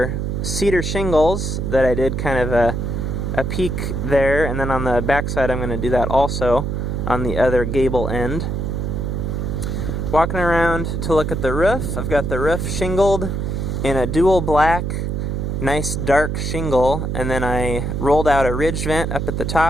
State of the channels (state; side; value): noise; right; hum, 2 dB below the sound